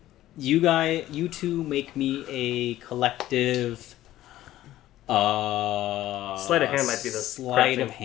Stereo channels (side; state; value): right; quieter; 14.4 dB